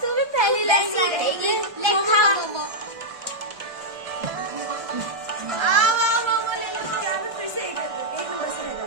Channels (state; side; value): late; left; 1.3 ms